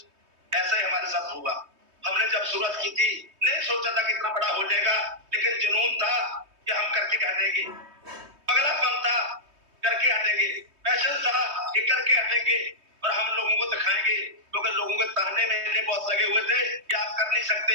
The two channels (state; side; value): late; left; 3.2 ms